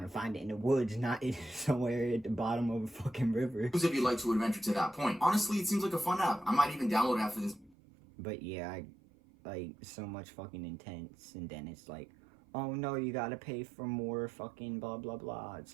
to find it in the woods, not somewhere at the bottom of a fucking river. If you'd like to adventure to that point. Honestly, it seems like a fun app. I might even download it after this. But yeah, I like so much fucking intense, and then it's like, oh no, you gotta pay for more fucking blah blah blah. It's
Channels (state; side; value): drops out; left; at 7.8 s